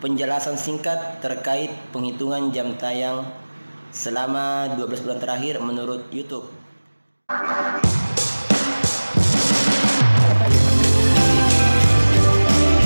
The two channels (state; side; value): inverted; both; correlation -1.00